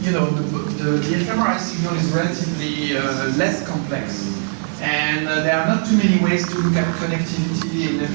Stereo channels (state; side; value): silent; left; 58 dB below the other